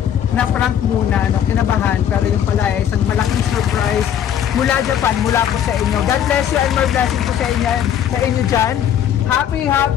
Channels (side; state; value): right; quieter; 9.7 dB